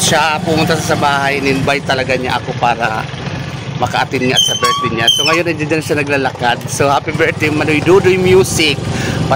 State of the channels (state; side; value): identical; both; correlation 1.00